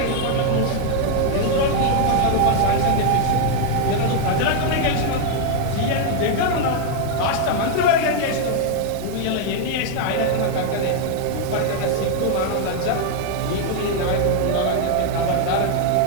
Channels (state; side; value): different; both; correlation 0.00